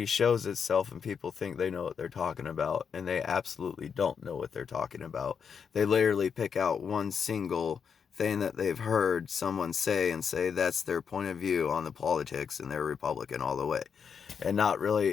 shows itself and people think they know what they're talking about, and they absolutely don't know what they're talking about. They literally pick out one single thing that they've heard someone say and say that's their point of view on the politics, and they're Republican all the way, and not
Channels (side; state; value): right; quieter; 6.7 dB